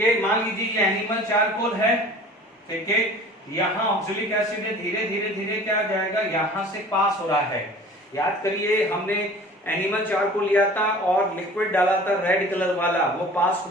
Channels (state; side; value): normal; both; correlation 0.44